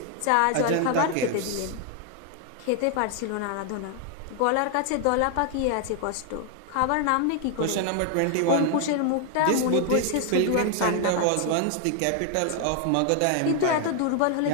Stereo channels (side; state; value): both; different; correlation 0.00